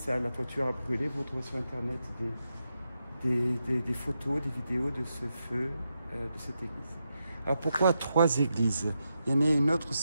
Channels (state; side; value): inverted; both; correlation -0.86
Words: la toiture a brûlé. Vous trouvez sur internet des photos, des vidéos de ce feu de cette église. Alors pourquoi 3 églises? Il y en a une autre